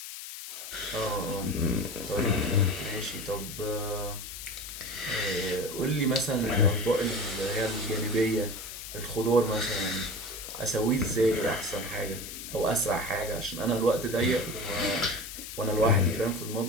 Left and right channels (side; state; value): left; noise; hiss, 10 dB below the sound